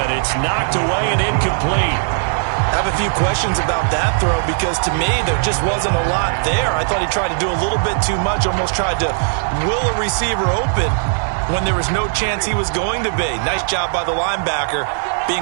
It's knocked away and incomplete. I have a few questions about that throw because to me there just wasn't a lot there. I thought he tried to do a little bit too much, almost tried to will a receiver open when there was no chance he was going to be. Nice job by the linebacker being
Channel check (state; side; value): silent; left; 67 dB below the other